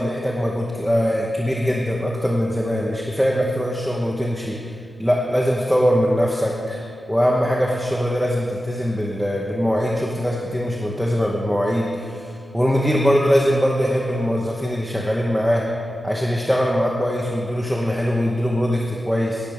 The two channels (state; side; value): normal; both; correlation 0.93